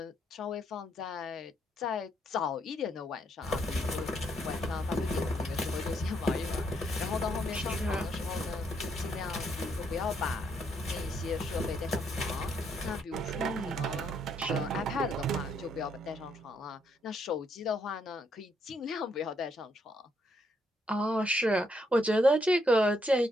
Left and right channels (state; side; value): normal; both; correlation 0.74